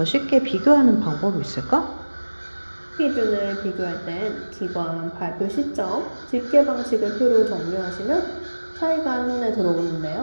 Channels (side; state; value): both; inverted; correlation -1.00